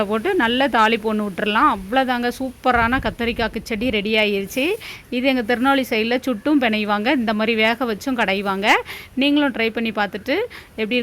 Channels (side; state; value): both; identical; correlation 1.00